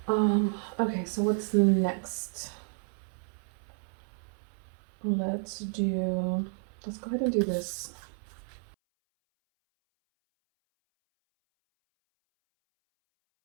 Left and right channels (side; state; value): left; silent; 57 dB below the other